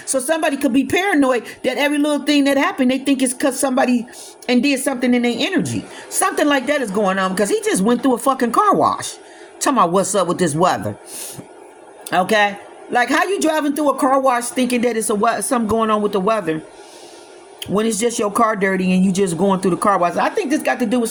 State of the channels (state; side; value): identical; both; correlation 1.00